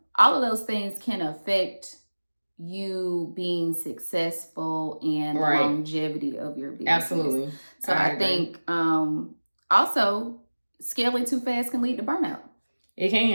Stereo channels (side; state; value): both; inverted; correlation -1.00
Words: of those things can affect you being successful and longevity of your business. Absolutely. So I think also scaling too fast can lead to burnout. It